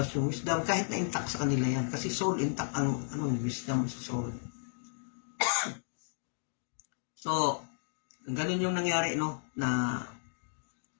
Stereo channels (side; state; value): right; silent; digital silence